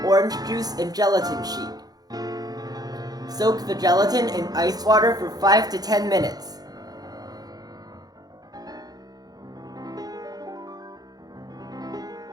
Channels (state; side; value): late; left; 0.19 ms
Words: orange juice, and gelatin sheet. Soak the gelatin in ice water for 5 to 10 minutes.